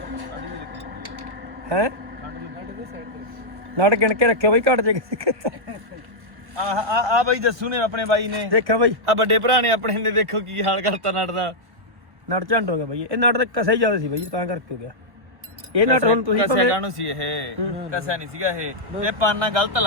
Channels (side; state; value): left; late; 1.1 ms